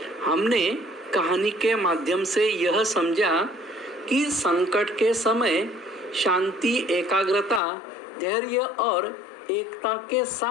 हमने कहानी के माध्यम से यह समझा कि संकट के समय शांति, एकाग्रता, धैर्य और एकता के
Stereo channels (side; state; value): right; drops out; at 7.6 s